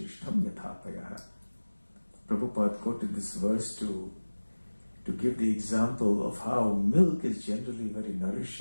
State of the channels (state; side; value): inverted; both; correlation -1.00